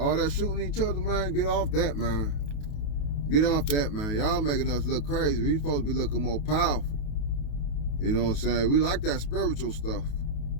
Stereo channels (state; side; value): late; right; 28 ms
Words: that shooting each other, man, get off that, man. Get off that, man. Y'all making us look crazy. We supposed to be looking more powerful. You know what I'm saying? We like that spiritual stuff.